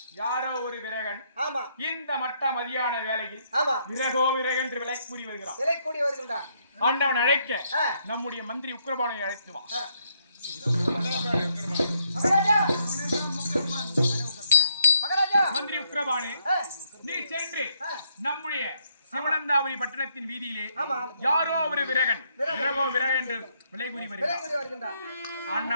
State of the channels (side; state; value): both; inverted; correlation -0.73